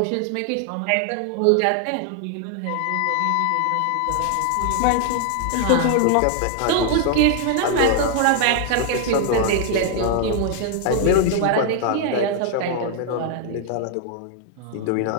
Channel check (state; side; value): different; both; correlation 0.00